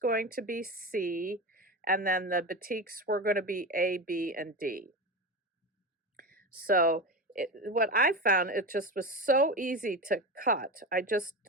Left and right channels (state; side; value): normal; both; correlation 0.22